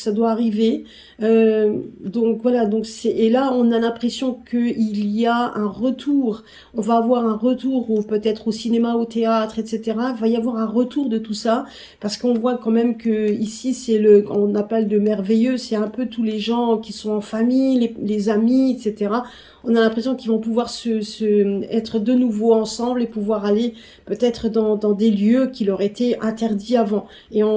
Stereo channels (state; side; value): identical; both; correlation 1.00